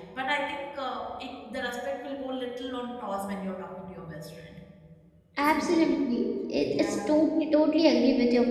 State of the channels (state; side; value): identical; both; correlation 1.00